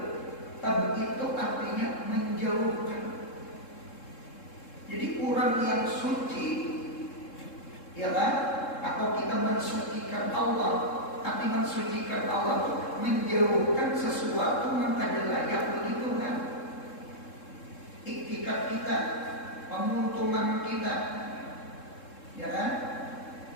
Tab'id itu artinya menjauhkan. Jadi orang yang suci, ya kan? Atau kita mensucikan Allah. Arti mensucikan Allah itu menjauhkan sesuatu yang ada layak bagi Tuhan. Iktikat kita, pemuntungan kita, ya kan?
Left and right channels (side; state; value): right; late; 3.7 ms